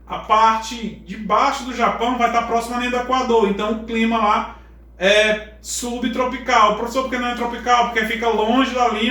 a parte de baixo do Japão vai estar próxima à linha do Equador. Então o clima lá é subtropical. Professor, por que não é tropical? Porque fica longe da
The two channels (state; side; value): identical; both; correlation 1.00